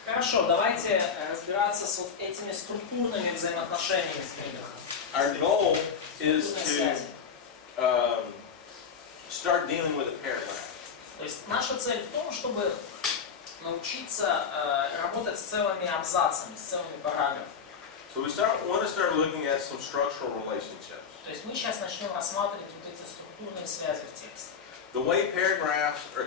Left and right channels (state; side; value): quieter; right; 6.4 dB